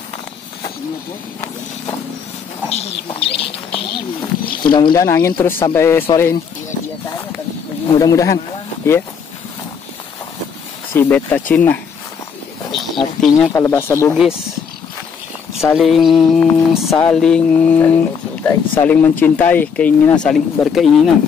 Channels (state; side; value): quieter; right; 6.5 dB